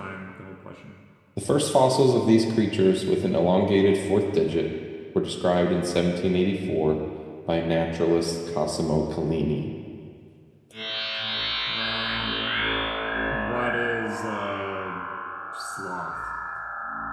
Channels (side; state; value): both; identical; correlation 1.00